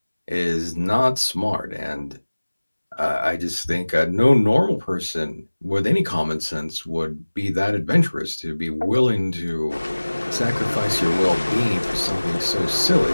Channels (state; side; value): inverted; both; correlation -1.00